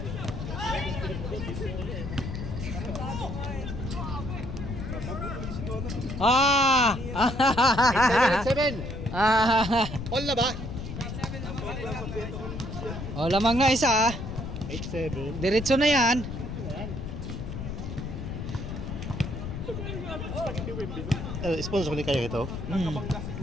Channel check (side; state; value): left; noise; rumble, 6 dB below the sound